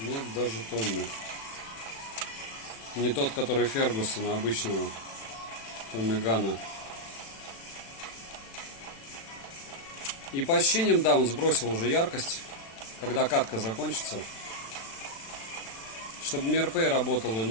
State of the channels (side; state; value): right; late; 36 ms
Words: даже Томми. Не тот, который Фергусона обычного. Томми Гана. И по ощущениям, да, он сбросил уже яркость. Когда катка закончится. Чтобы MirPay работал,